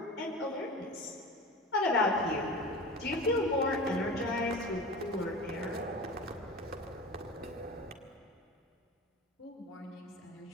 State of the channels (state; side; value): normal; both; correlation 0.32